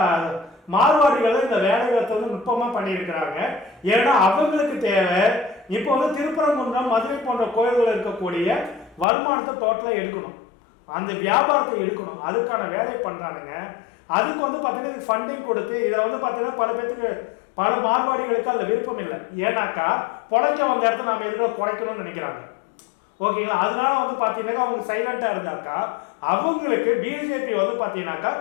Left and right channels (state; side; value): drops out; right; at 9.1 s